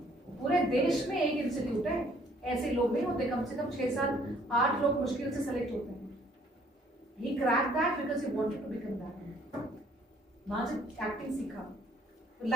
पूरे देश में एक इंस्टीट्यूट है, ऐसे लोग नहीं होते, कम से कम 6-7-8 लोग मुश्किल से सेलेक्ट होते हैं। He cracked that because he wanted to become that. वहां से एक्टिंग सीखा।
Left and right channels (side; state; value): both; normal; correlation 0.60